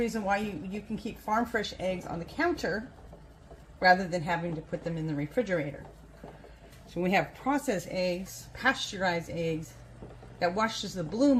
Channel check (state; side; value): identical; both; correlation 1.00